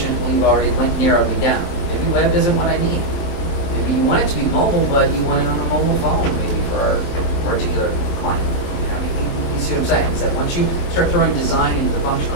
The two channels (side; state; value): right; late; 23 ms